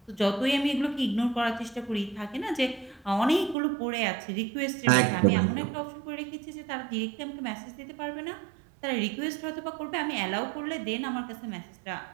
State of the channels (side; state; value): left; drops out; at 3.6 s